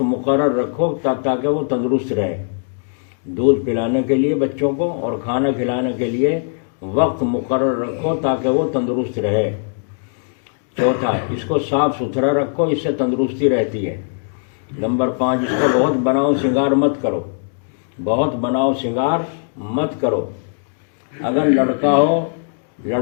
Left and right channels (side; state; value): right; silent; digital silence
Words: مقرر رکھو تاکہ وہ تندرست رہے۔ دودھ پلانے کے لیے بچوں کو اور کھانا کھلانے کے لیے وقت مقرر رکھو تاکہ وہ تندرست رہے۔ چوتھا، اس کو صاف ستھرا رکھو، اس سے تندرستی رہتی ہے۔ نمبر 5، اس کا بہت بناؤ سنگار مت کرو، بہت بناؤ سنگار مت کرو۔ اگر لڑکا